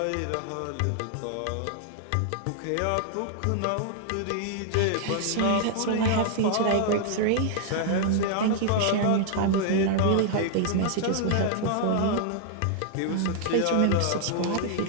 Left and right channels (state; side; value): different; both; correlation -0.01